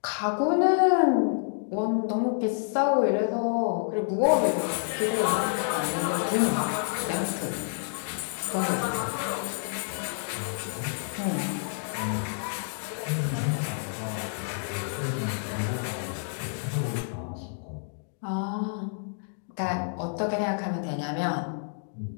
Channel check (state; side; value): silent; right; digital silence